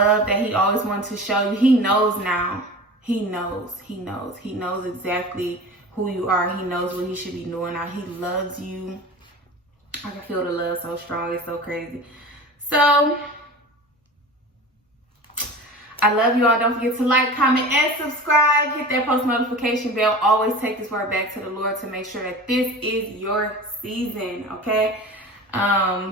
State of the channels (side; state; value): both; normal; correlation 0.35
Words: that he always wanted to show you. He knows now. He knows. He knows. He knows exactly who you are. He knows what he should be doing now. He loves you. I can feel the love so strong. It's so crazy. So I love you all. Don't forget to like, comment, and subscribe. Hit that post notification bell. Always take this word back to the Lord to make sure that this is your season, okay?